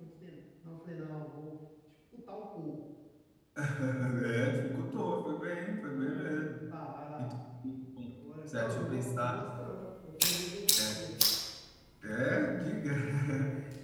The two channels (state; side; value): identical; both; correlation 1.00